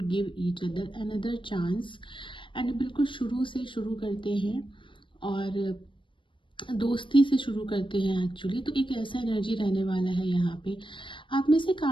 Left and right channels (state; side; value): late; right; 0.24 ms